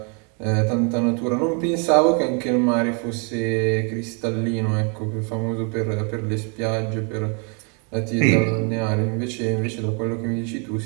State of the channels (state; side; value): quieter; left; 37.0 dB